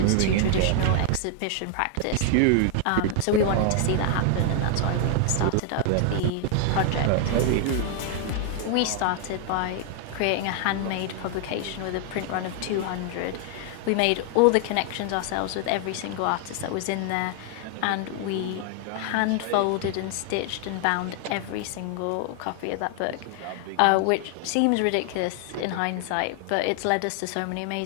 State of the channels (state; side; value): different; both; correlation 0.00